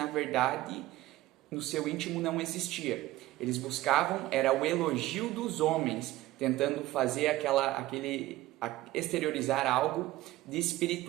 verdade no seu íntimo não existia. Eles buscavam era o elogio dos homens, tentando fazer exteriorizar algo de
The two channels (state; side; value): quieter; left; 16.6 dB